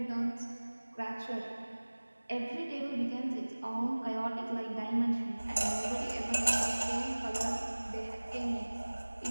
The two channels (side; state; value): both; inverted; correlation -1.00